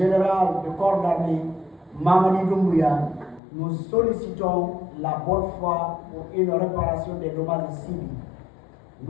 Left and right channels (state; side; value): drops out; right; at 3.4 s